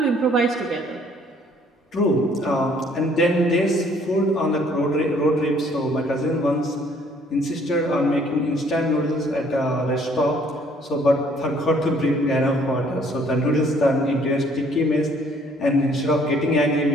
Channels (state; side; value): normal; both; correlation 0.61